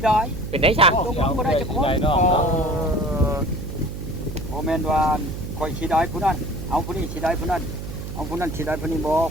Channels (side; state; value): right; noise; hum, 8 dB below the sound